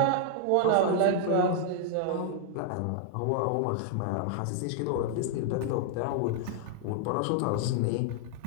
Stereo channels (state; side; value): different; both; correlation -0.01